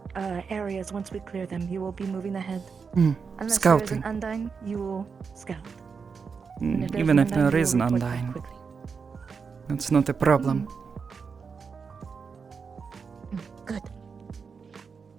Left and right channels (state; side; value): quieter; left; 5.6 dB